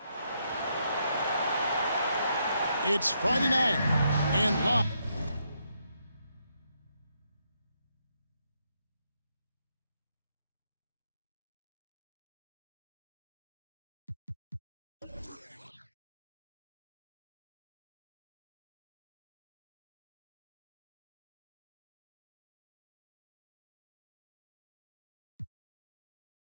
It's Friday night and live.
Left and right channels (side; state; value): both; inverted; correlation -0.77